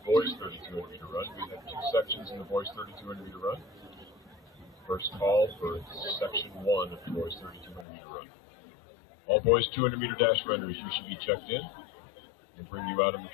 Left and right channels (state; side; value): drops out; right; at 7.9 s